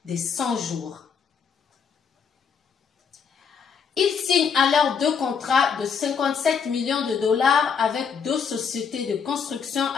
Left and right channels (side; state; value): right; quieter; 6.5 dB